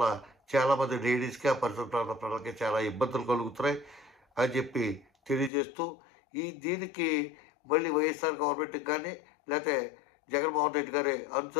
చాలామంది లేడీస్కి, ఆ పరిసర ప్రాంత ప్రజలకి చాలా ఇబ్బందులు కలుగుతున్నాయి అని చెప్పి తెలియజేస్తూ, దీనికి మళ్ళీ వైఎస్ఆర్ గవర్నమెంట్కి కానీ లేకపోతే జగన్మోహన్ రెడ్డి గారి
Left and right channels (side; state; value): right; drops out; at 5.5 s